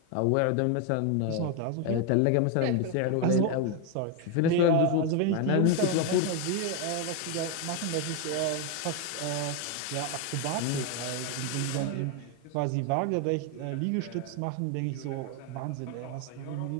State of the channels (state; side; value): different; both; correlation 0.01